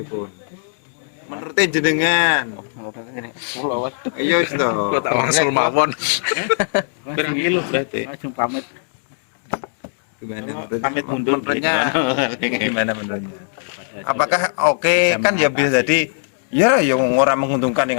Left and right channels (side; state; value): right; silent; digital silence